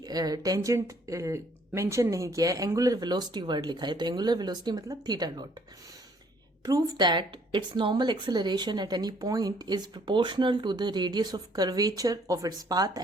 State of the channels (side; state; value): both; normal; correlation 0.63